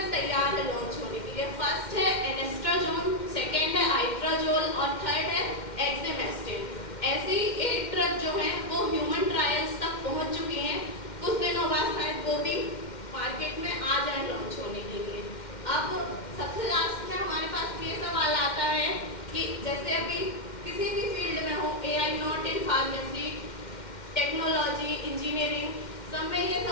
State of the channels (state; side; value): late; right; 2.1 ms